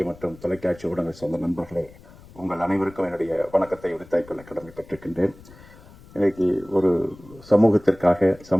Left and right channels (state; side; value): noise; left; rumble, 22 dB below the sound